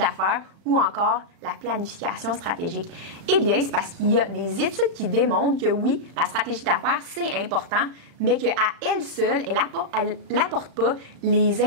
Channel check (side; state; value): left; late; 35 ms